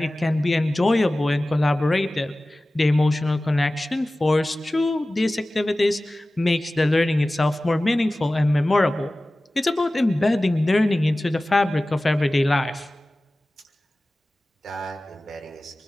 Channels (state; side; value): normal; both; correlation 0.97